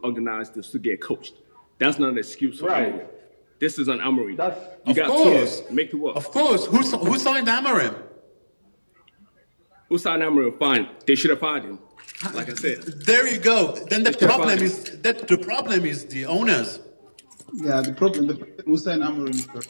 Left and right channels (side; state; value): both; inverted; correlation -1.00